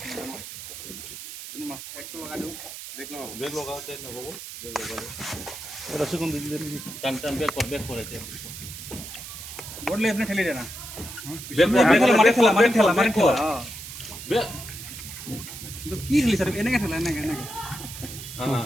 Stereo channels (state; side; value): noise; right; hiss, 11 dB below the sound